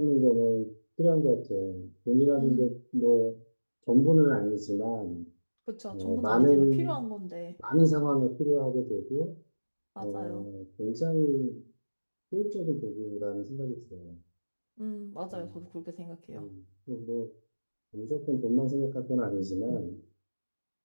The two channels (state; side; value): inverted; both; correlation -1.00